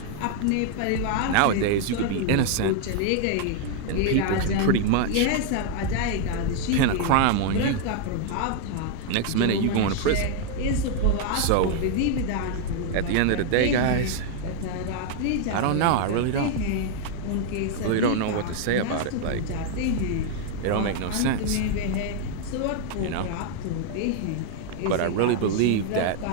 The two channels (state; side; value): different; both; correlation 0.00